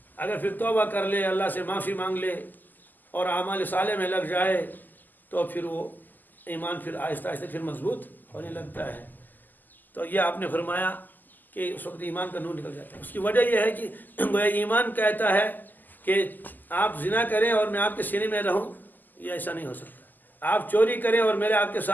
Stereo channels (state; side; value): late; right; 0.086 ms